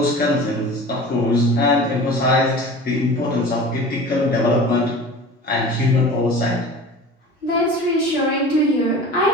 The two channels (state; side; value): normal; both; correlation 0.38